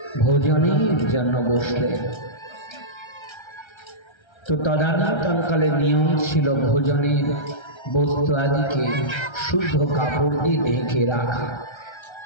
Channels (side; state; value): right; late; 1.3 ms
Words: ভোজনের জন্য বসলেন। তো তদানীন্তনকালে নিয়ম ছিল ভোজনের বস্তু আদিকে শুদ্ধ কাপড় দিয়ে ঢেকে রাখা।